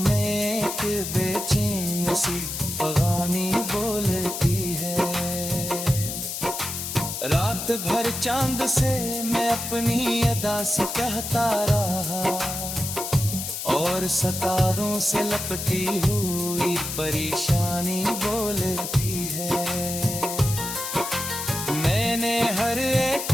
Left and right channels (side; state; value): left; noise; hiss, 5 dB below the sound